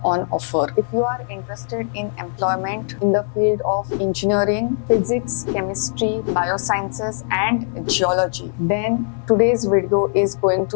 on offer. If you are interested in employment in the field of engineering, physics, chemistry, biosciences and geology, then today's video is going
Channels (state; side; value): silent; right; 65 dB below the other